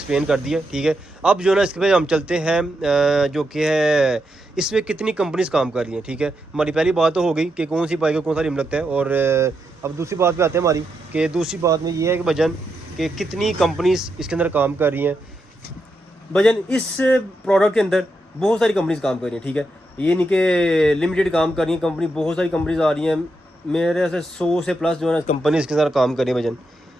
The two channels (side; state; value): both; normal; correlation 0.84